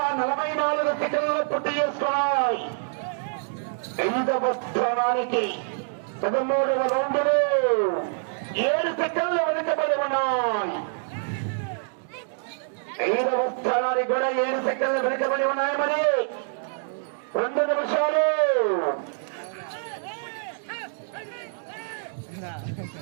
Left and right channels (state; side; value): silent; left; digital silence